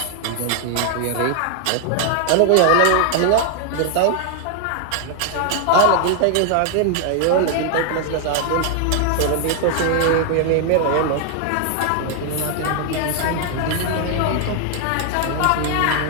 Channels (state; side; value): different; both; correlation 0.00